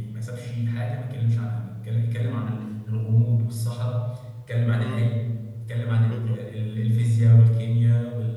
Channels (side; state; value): both; identical; correlation 1.00